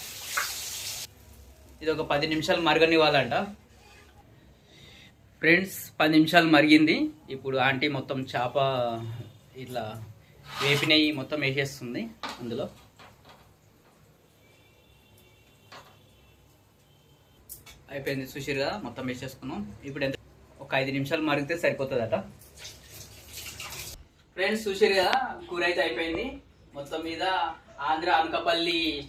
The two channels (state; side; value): identical; both; correlation 1.00